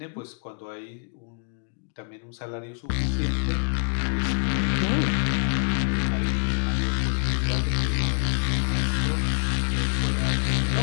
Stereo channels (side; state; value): right; silent; digital silence